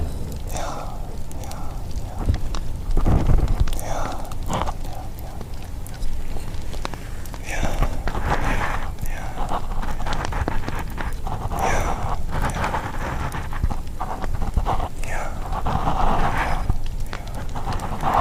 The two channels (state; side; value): identical; both; correlation 1.00